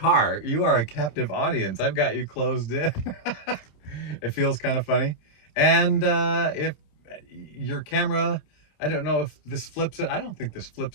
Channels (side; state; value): right; late; 28 ms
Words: You are a captive audience. I've got you closed in. It feels kind of funny. And if your camera, I don't know if this flips it. I don't think this